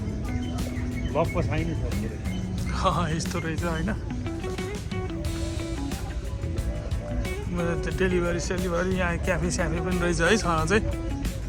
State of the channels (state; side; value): identical; both; correlation 1.00